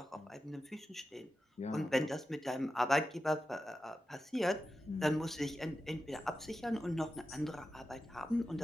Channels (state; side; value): normal; both; correlation 0.91